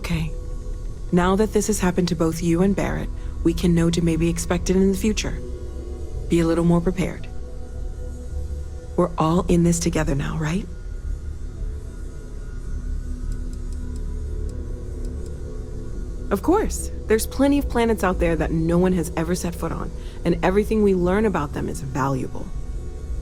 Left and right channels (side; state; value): both; identical; correlation 1.00